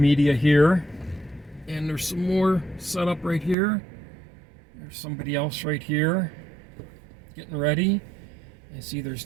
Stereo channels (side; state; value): left; drops out; at 3.6 s